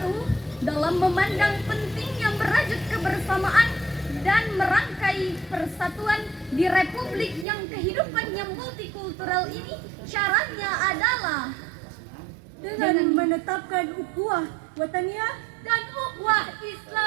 dalam memandang pentingnya merajut kebersamaan dan merangkai persatuan di republik yang kehidupannya multikultural ini, syaratnya adalah dengan menetapkan ukhuwah wataniyah dan ukhuwah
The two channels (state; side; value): drops out; left; at 7.5 s